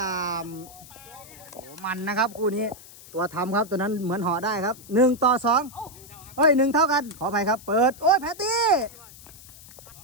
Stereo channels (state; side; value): noise; left; hiss, 19 dB below the sound